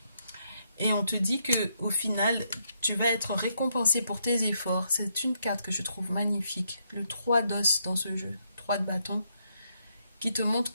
Et on te dit que au final, tu vas être récompensé pour tes efforts. C'est une carte que je trouve magnifique. Le 3 d'os dans ce jeu, 3 de bâton, qui te montre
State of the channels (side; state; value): both; inverted; correlation -0.76